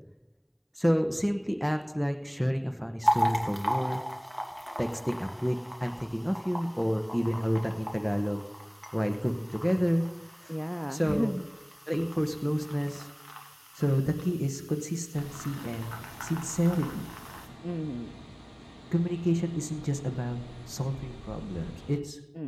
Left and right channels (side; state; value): both; identical; correlation 1.00